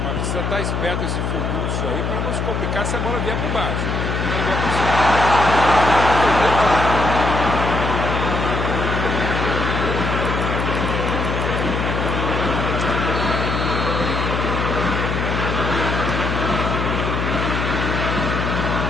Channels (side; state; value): left; noise; hum, 1 dB below the sound